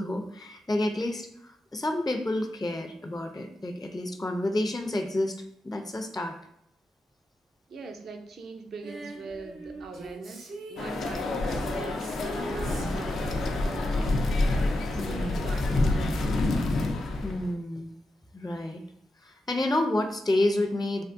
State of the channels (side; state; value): both; normal; correlation 0.89